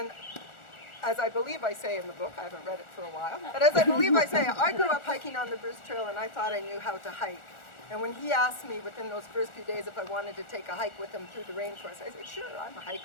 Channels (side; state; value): right; late; 1.4 ms